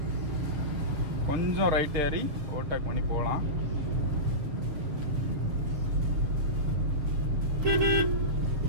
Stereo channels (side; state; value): left; late; 7.3 ms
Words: கொஞ்சம் ரைட் ஏறி ஓவர்டேக் பண்ணி போகலாம்.